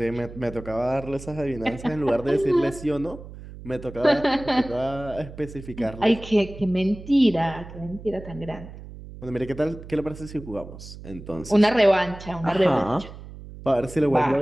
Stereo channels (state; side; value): noise; right; hum, 15 dB below the sound